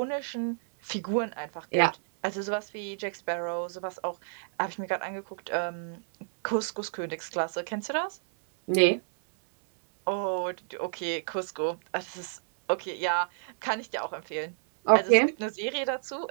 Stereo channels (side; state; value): left; silent; 58 dB below the other